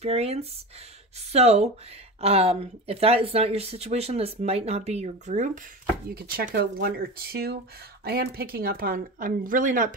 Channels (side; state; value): both; normal; correlation 0.28